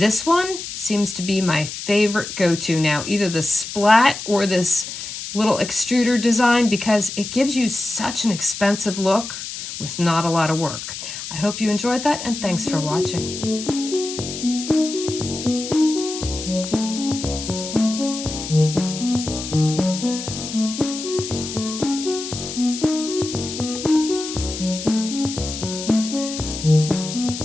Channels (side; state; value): left; noise; hiss, 8 dB below the sound